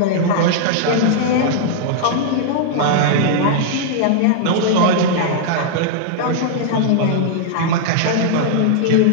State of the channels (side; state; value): both; different; correlation -0.01